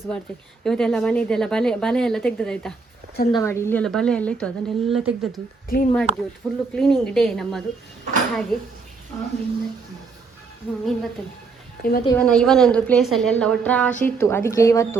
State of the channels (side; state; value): left; quieter; 4.5 dB